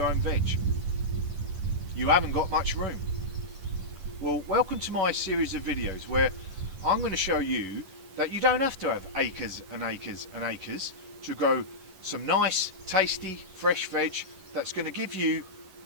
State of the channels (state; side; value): late; left; 11 ms